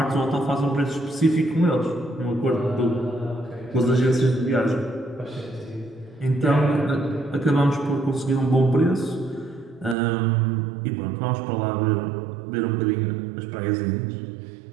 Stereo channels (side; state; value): left; drops out; at 10.0 s